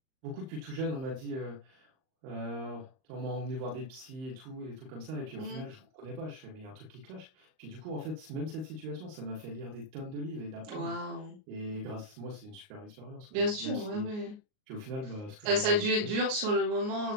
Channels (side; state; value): left; late; 38 ms